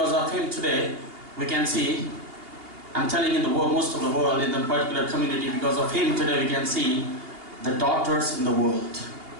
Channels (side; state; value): left; late; 2.8 ms